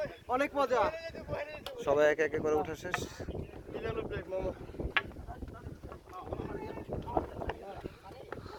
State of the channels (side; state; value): both; identical; correlation 1.00